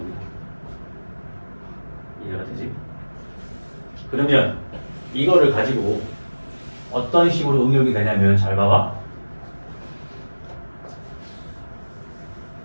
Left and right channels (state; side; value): inverted; both; correlation -1.00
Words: 이해가 되지? 그러면 이거를 가지고 어떤 식으로 응용이 되냐면 잘 봐봐.